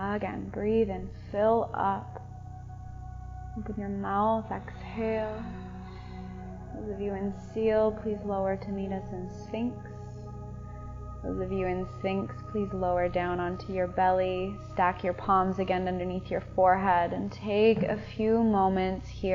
Again, breathe in, fill up. Open your mouth, exhale. Those of you in seal, please lower to meet us in Sphinx. Those of you in Sphinx, please lower down onto your belly. Stack your palms again underneath your forehead and take a few moments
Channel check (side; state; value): both; identical; correlation 1.00